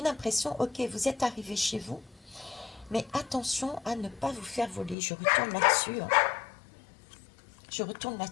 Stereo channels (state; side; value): drops out; right; at 5.0 s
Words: l'impression, ok, vous êtes arrivé chez vous, mais attention à ne pas vous faire voler. Je retourne là-dessus. Hein. Je retourne